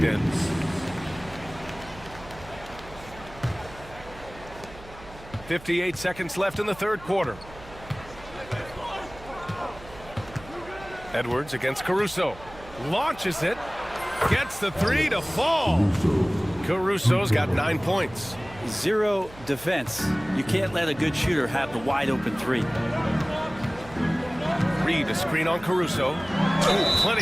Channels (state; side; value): noise; right; hum, 18 dB below the sound